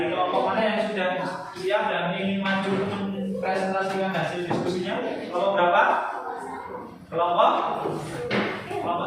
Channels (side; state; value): both; identical; correlation 1.00